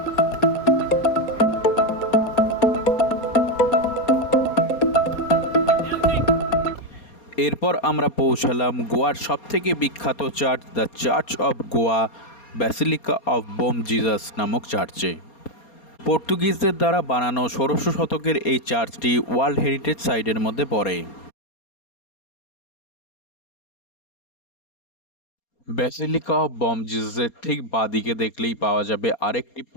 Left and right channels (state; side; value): late; right; 4.3 ms